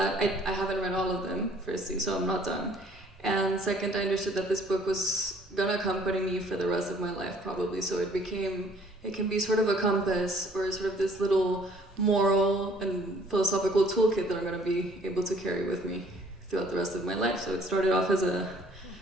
I haven't read all of them, firstly, so I'm not done. And second, I understood that this book was gonna accompany me for the rest of my life, probably. So it can be sort of a compass, or sort of this little moral and philosophical toolkit that I'm gonna be able to carry with me throughout the rest of my life. So it started off as a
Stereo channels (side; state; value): both; normal; correlation 0.58